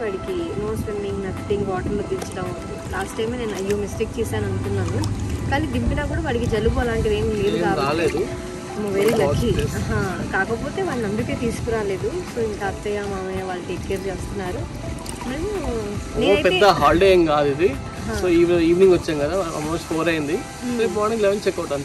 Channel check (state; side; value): identical; both; correlation 1.00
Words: వాడికి నో స్విమ్మింగ్, నథింగ్, వాటర్లో దించడం. లాస్ట్ టైమే నేను అయ్యో మిస్టేక్ చేశాను అనుకున్నాను, కానీ దింపినా కూడా వాడికి జలుబు అలాంటిది ఏం లేదు కాబట్టి వెరీ లక్కీ. కాకపోతే వాళ్ళని అందుకే తీసుకురాలేదు. సో ఇంకా అత్తయ్య మామయ్య వాళ్ళు టేక్ కేర్ చేస్తున్నారు. పెద్ద హాలిడే ఏం కాదు ఇది. సో ఈవినింగ్ వచ్చాం కదా, ఆల్మోస్ట్ 4 అయింది. రేపు మార్నింగ్ 11 చెక్అవుట్